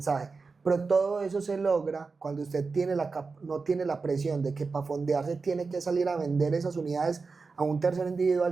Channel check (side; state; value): left; quieter; 4.4 dB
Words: Pero todo eso se logra cuando usted no tiene la presión de que para fondearse tiene que salir a vender esas unidades a un tercero individual,